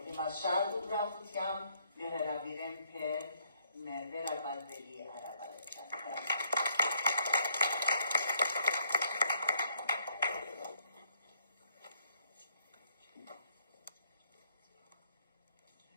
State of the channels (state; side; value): inverted; both; correlation -0.69